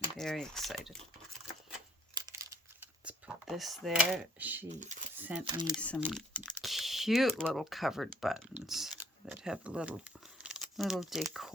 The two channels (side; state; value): both; normal; correlation 0.60